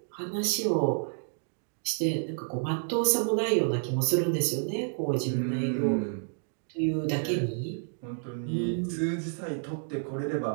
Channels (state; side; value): silent; left; digital silence